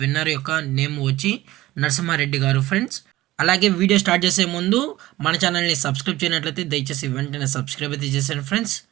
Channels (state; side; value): quieter; left; 16.8 dB